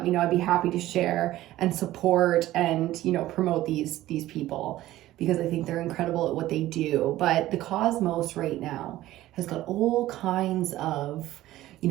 me know. I'd be happy to share and support and, promote these people, because I think they're incredible at what they do. But the cosmos right now has got all kinds of,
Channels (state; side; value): quieter; left; 15.3 dB